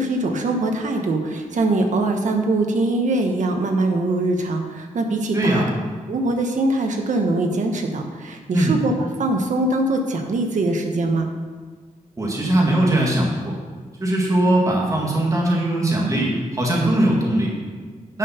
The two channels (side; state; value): both; normal; correlation 0.71